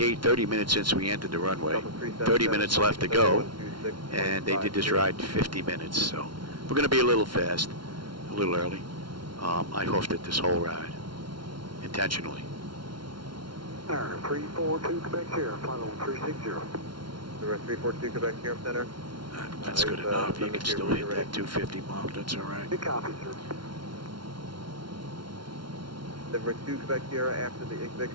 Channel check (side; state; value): left; late; 0.73 ms